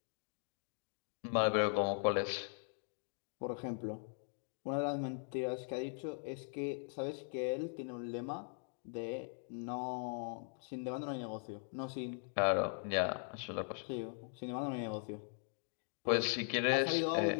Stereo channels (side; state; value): right; silent; 51 dB below the other